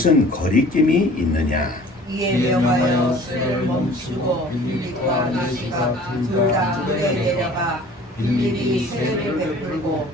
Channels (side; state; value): both; normal; correlation 0.48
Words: 거리낌이 있느냐? 이에 명하여 수레를 멈추고 빌립과 네시가 둘 다 물에 내려가 빌립이 세례를 베풀고